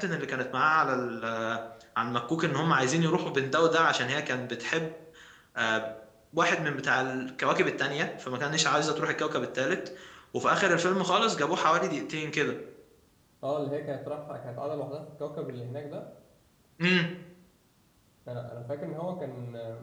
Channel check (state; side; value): identical; both; correlation 1.00